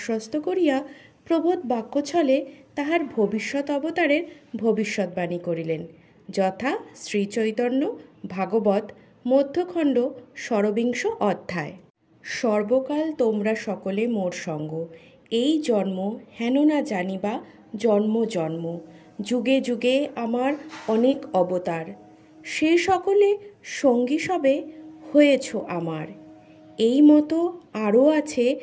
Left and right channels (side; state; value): both; identical; correlation 1.00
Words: করিয়া প্রবোধ বাক্যছলে তাহার ভবিষ্যৎ অবতারের ভবিষ্যৎবাণী করিলেন, যথা শ্রীচৈতন্য ভাগবত মধ্যখণ্ড 16 অধ্যায়। সর্বকাল তোমরা সকলে মোর সঙ্গ, এই জন্ম হেন না জানিবা জন্ম জন্ম, যুগে যুগে আমার অনেক অবতার, সে সকলে সঙ্গী সবে হয়েছ আমার। এই মতো আরও আছে